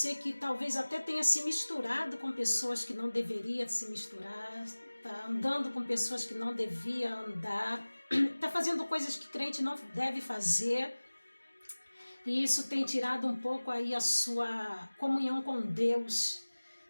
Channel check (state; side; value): inverted; both; correlation -1.00